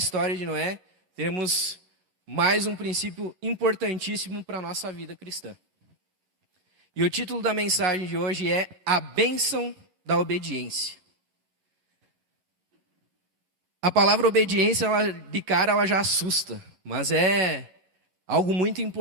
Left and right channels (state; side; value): late; left; 11 ms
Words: de Noé, temos mais um princípio importantíssimo para a nossa vida cristã. E o título da mensagem de hoje é A Bênção da Obediência. A palavra obediência, de cara, ela já assusta, mas é algo muito